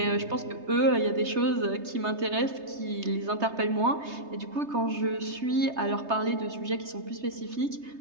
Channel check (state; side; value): late; left; 3.3 ms